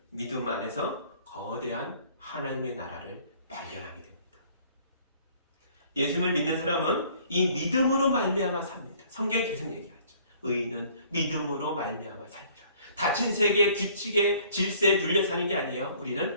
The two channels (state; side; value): inverted; both; correlation -0.57